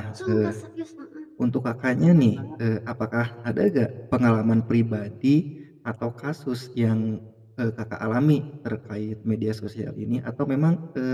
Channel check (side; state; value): both; identical; correlation 1.00